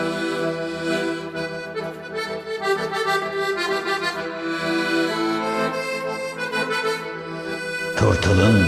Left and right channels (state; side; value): identical; both; correlation 1.00